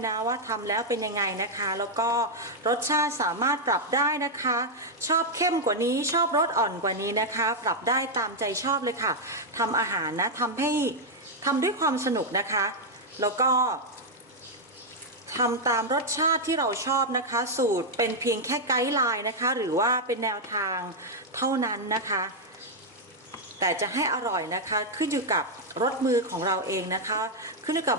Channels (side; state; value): both; normal; correlation -0.02